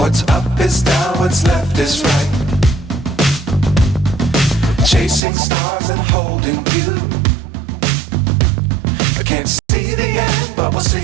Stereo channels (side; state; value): left; drops out; at 5.2 s